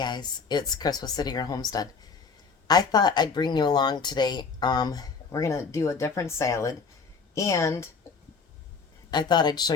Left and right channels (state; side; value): quieter; right; 5.2 dB